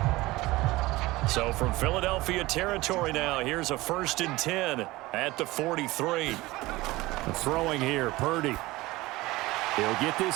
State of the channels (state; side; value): quieter; left; 19.7 dB